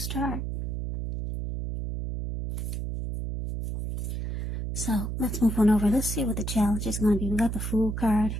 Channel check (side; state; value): right; noise; hum, 3 dB below the sound